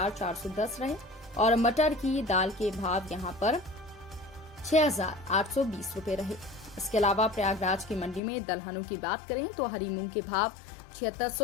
रहे और मटर की दाल के भाव यहां पर 6820 रुपए रहे। इसके अलावा प्रयागराज की मंडी में दलहनों की बात करें तो हरी मूंग के भाव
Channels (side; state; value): right; drops out; at 8.2 s